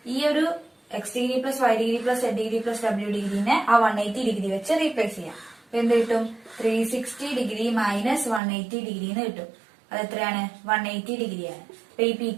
ഈ ഒരു X degree plus Y degree plus Z degree plus W ഡിഗ്രിനെ ആ 180 ഡിഗ്രി വെച്ച് റീപ്ലേസ് ചെയ്യാം. അപ്പൊ എന്ത് കിട്ടും, 360 ഡിഗ്രി മൈനസ് 180 ഡിഗ്രി എന്ന് കിട്ടും. അത് എത്രയാണ്, 180 ഡിഗ്രിയാണ്. അപ്പൊ ഈ പി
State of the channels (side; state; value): left; drops out; at 8.4 s